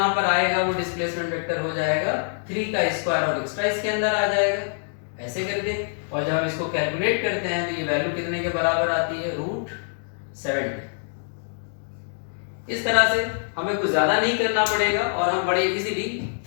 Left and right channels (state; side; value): silent; right; digital silence